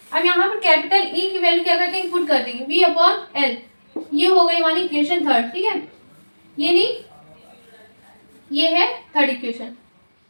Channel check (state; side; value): inverted; both; correlation -1.00